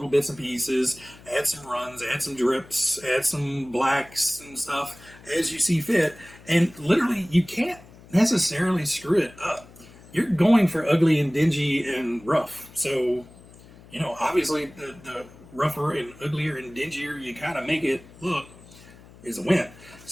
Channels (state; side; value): noise; left; hum, 22 dB below the sound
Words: bits and pieces. Add some runs, add some drips, add some blacks and stuff as you see fit. And literally, you can't necessarily screw it up. You're going for ugly and dingy and rough. So obviously the rougher and uglier and dingier you kind of make it look is a win.